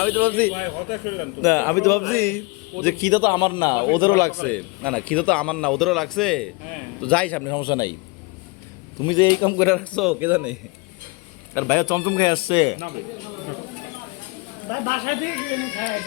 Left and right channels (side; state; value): right; quieter; 27.4 dB